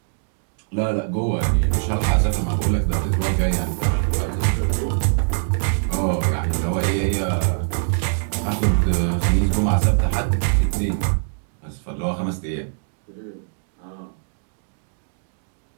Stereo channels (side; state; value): left; silent; digital silence